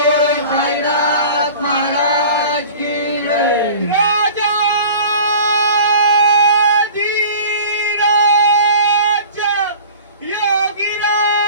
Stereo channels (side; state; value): both; inverted; correlation -0.42